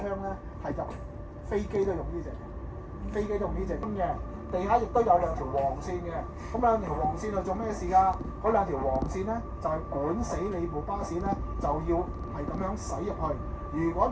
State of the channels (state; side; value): identical; both; correlation 1.00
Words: 咧係入飛機都用呢隻，飛機都用呢隻嘅。地下亦都有兩條黃線嘅，咁兩條黃線係做咩事㗎？嗰兩條黃線咧就係管死你部巴士咧，就要係咁樣駛入去。如果